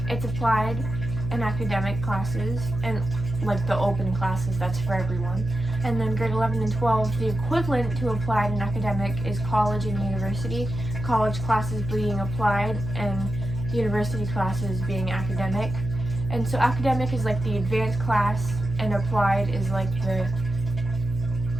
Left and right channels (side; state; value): right; noise; hum, 5 dB below the sound